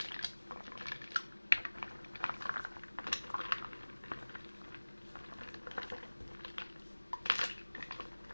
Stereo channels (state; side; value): inverted; both; correlation -1.00